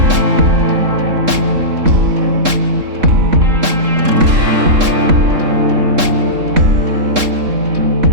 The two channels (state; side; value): late; left; 3.7 ms